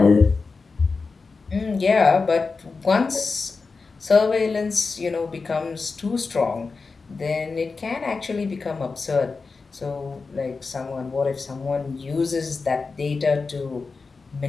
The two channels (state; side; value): quieter; right; 4.4 dB